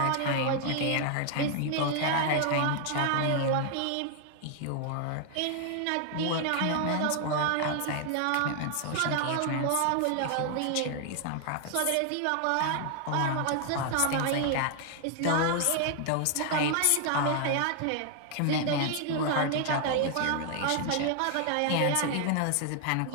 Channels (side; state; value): both; different; correlation 0.00